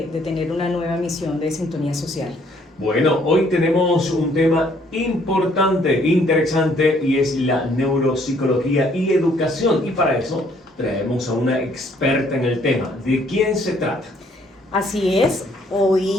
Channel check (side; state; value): both; normal; correlation 0.64